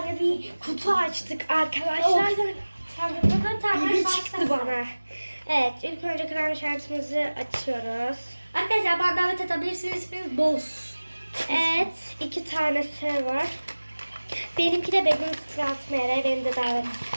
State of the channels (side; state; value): both; inverted; correlation -1.00